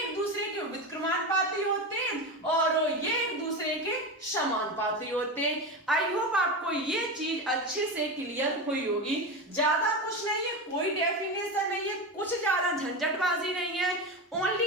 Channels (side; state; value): both; normal; correlation 0.20